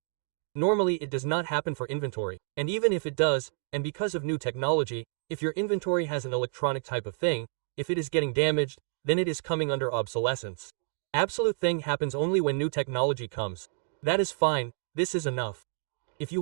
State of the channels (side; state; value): left; silent; 58 dB below the other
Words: Normally it does not happen for inventory, and even if it does, and because of new technology, if your inventory has an electronic type of thing, if it is getting damaged, then it is coming under obsolescence. Absolute thing happens only when new technology comes. That is fine, this is enough. If you